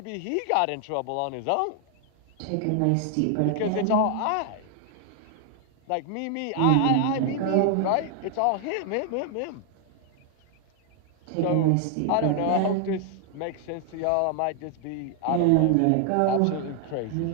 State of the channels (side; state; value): both; different; correlation 0.00